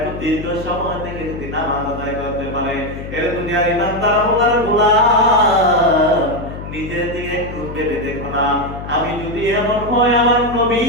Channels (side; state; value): left; noise; hum, 10 dB below the sound